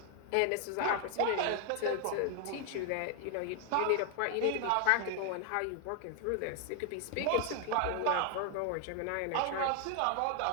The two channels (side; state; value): both; different; correlation 0.00